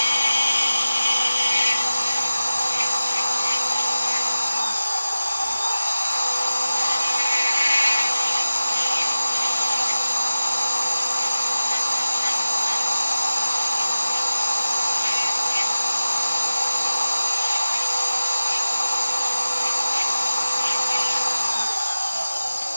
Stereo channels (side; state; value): both; inverted; correlation -0.95